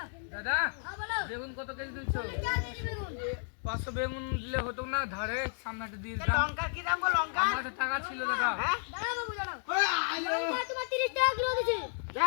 দাদা হ্যাঁ বলো। বেগুন কত কেজি দিচ্ছ? যা দিবি বেগুন। 500 বেগুন দিলে হতো না, ধারে সামনেটা দিয়ে দিতাম। লঙ্কা কি দাম গো লঙ্কা? আমার কাছে টাকা ছিল দাদা। হ্যাঁ? দাঁড়াও বাবু দাঁড়াও। লঙ্কা তোমার 30 টাকা কিলো দিছি।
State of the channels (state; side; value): silent; right; 56 dB below the other